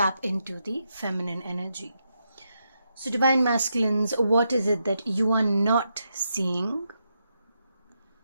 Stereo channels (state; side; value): inverted; both; correlation -0.83